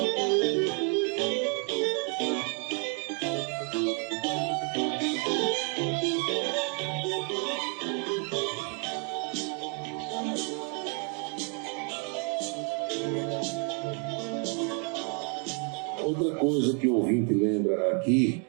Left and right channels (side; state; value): left; quieter; 38.9 dB